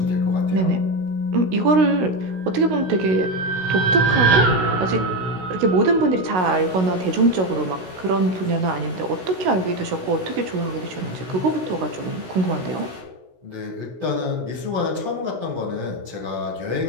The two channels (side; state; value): left; late; 16 ms